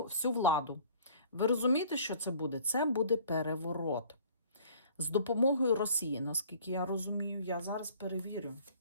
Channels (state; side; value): inverted; both; correlation -0.52